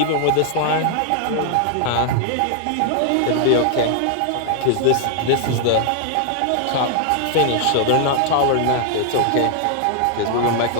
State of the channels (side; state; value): both; different; correlation 0.00